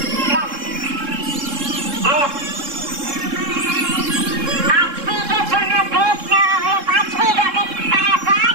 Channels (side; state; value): left; late; 3.7 ms